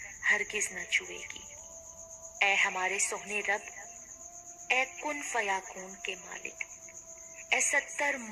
ہرگز نہ چھوئے گی۔ اے ہمارے سوہنے رب، اے کن فیاکون کے مالک، اے 70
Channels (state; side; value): identical; both; correlation 1.00